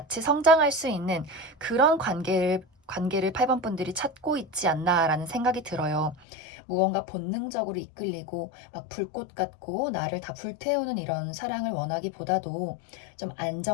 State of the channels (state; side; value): drops out; right; at 6.2 s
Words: 성장할 수 있는 그런 관계를 8번 분들이 찾고 있지 않나라는 생각이 들어요. 무언가 본능적으로 이끌리고 막 불꽃 같고 나를 다 불태우는 이런 사랑을 원하기보다도 좀